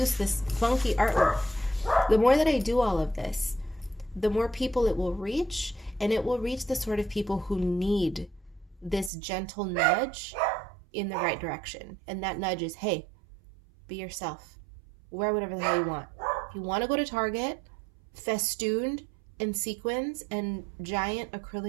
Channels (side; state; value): left; drops out; at 9.1 s